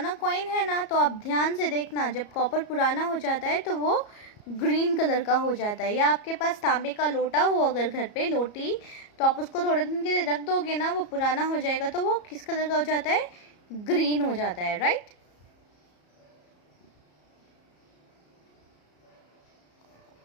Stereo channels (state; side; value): late; right; 34 ms